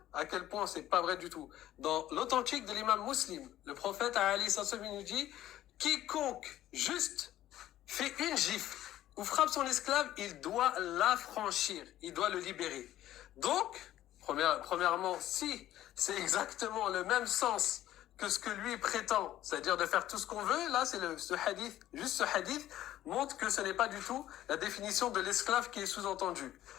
à quel point c'est pas vrai du tout. Dans l'authentique de l'imam Muslim, le prophète Ali Sassoumi nous dit quiconque juste fait une gifle ou frappe son esclave, il doit l'affranchir, il doit le libérer. Donc, premièrement, si c'est exactement le même sens que ce que lui prétend, c'est-à-dire de faire tout ce qu'on veut, là, c'est ce hadith, juste ce hadith montre que ce n'est pas du tout la définition de l'esclave qui est sous-entendue.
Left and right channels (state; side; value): quieter; right; 13.5 dB